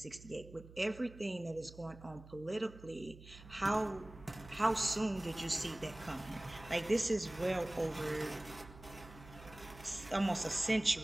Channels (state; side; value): noise; right; hum, 18 dB below the sound